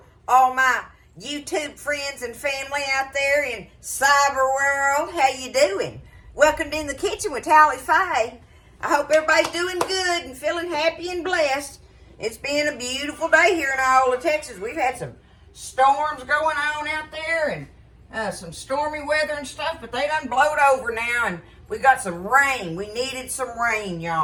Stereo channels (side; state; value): both; identical; correlation 1.00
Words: all my YouTube friends and family out there in cyber world. How you doing? Welcome to In the Kitchen with Tally Faye. I hope everybody's doing good and feeling happy and blessed. It's been a beautiful day here in Iola, Texas. We've had some storms going on out there and some stormy weather and stuff, but they done blowed over now, and we got some rain. We needed some rain,